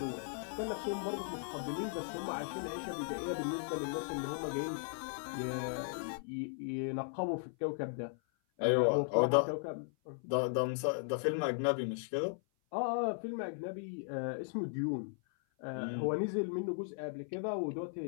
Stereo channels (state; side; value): silent; right; 53 dB below the other